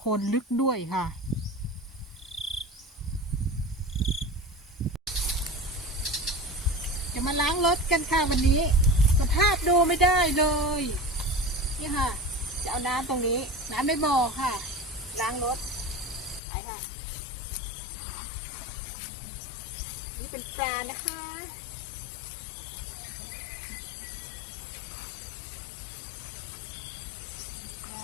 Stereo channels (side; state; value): right; drops out; at 16.4 s